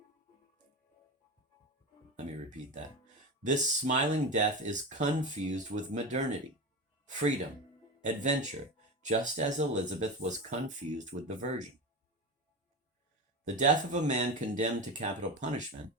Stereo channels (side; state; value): both; normal; correlation 0.23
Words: Let me repeat that. This smiling death is confused with modernity, freedom, adventure, just as Elizabeth was confused with the Virgin. The death of a man condemned to capital punishment,